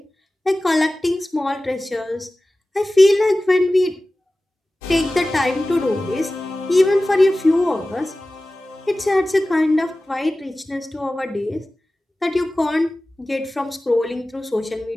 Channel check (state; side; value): normal; both; correlation 0.97